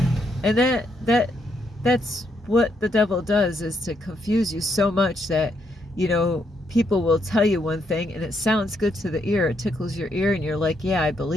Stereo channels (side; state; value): both; normal; correlation 0.76